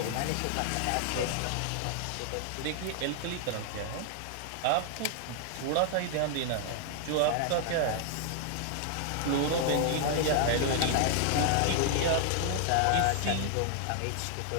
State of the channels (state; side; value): different; both; correlation 0.00